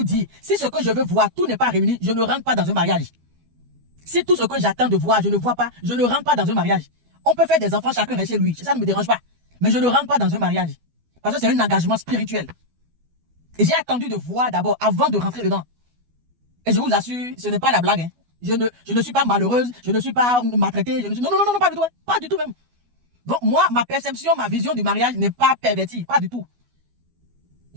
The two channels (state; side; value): late; left; 12 ms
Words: dit, si ce que je veux voir, tout n'est pas réuni, je ne rentre pas dans un mariage. Si tout ce que j'attends de voir, je ne vois pas, je ne rentre pas dans un mariage. On peut faire des enfants, chacun reste chez lui. Ça ne me dérange pas. Mais je ne rentre pas dans un mariage. Parce que c'est un engagement spirituel. Et j'ai attendu de voir d'abord, avant de rentrer dedans. Et je vous assure, ce n'est pas la blague. Hein. Je ne suis pas malheureuse, je ne suis pas maltraitée. Non, non, non, non, pas du tout. Hein. Pas du tout même. Donc moi, ma perception, ma vision du mariage n'est pas pervertie. Pas du tout.